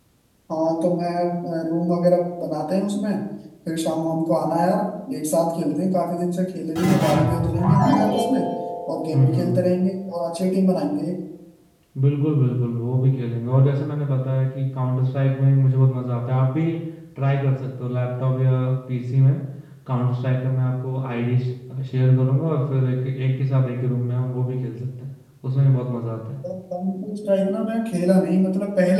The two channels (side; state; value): both; identical; correlation 1.00